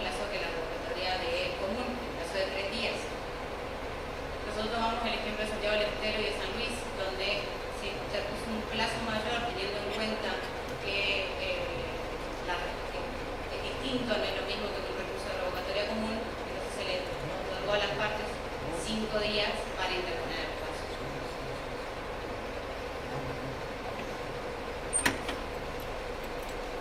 que la revocatoria de común, el plazo de 3 días. Nosotros tomamos el ejemplo de Santiago del Estero y de San Luis, donde se puso un plazo mayor teniendo en cuenta que es distinto, no es lo mismo que un recurso de revocatoria común, entonces se le otorgó a las partes 5 días para interponer el caso.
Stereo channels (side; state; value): both; identical; correlation 1.00